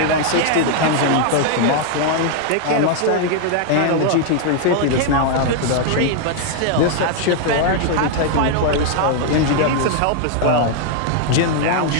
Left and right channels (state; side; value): different; both; correlation 0.00